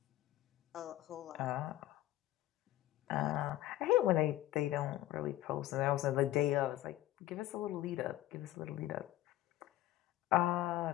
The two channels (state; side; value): quieter; right; 15.2 dB